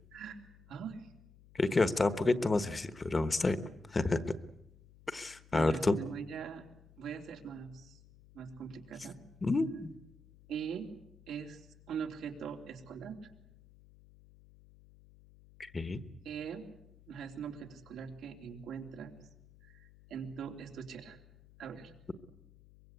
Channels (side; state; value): left; noise; hum, 23 dB below the sound